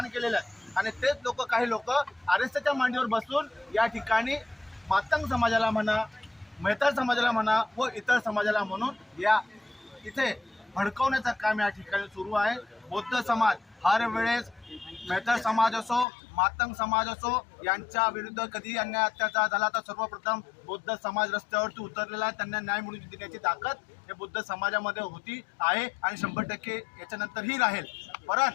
केलेलं आहे आणि तेच लोक काही लोक RSSच्या मांडीवर बसून या ठिकाणी मातंग समाजाला म्हणा, मेहतर समाजाला म्हणा व इतर समाजाला म्हणून या इथे भडकवण्याचं काम या ठिकाणी सुरू आहे. बौद्ध समाज हर वेळेस मेहतर समाज असो, मातंग समाज असो, यांच्या विरुद्ध कधी अन्याय अत्याचार झाला तर सर्वप्रथम बौद्ध समाज रस्त्यावरती उतरलेला आहे. त्यांना न्याय मिळवून देण्याची ताकद हे बौद्ध समाजामध्ये होती आहे आणि 100% याच्यानंतरही राहील.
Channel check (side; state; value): right; drops out; at 16.1 s